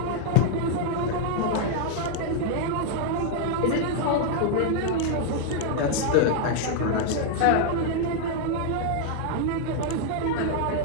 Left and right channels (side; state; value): both; different; correlation 0.00